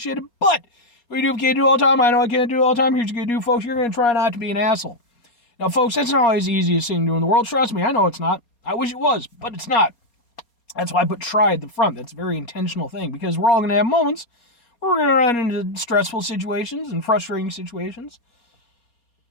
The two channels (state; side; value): late; right; 4.3 ms